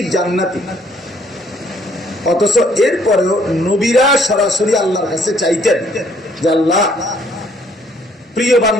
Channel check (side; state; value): both; normal; correlation 0.64